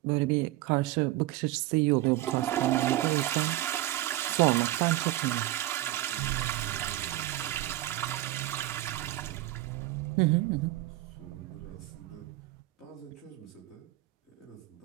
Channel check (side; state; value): left; quieter; 16.1 dB